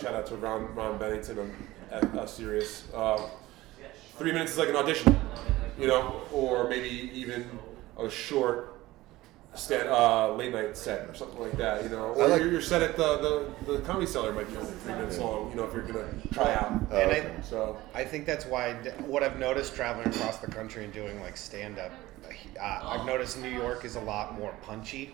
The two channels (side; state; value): left; quieter; 17.7 dB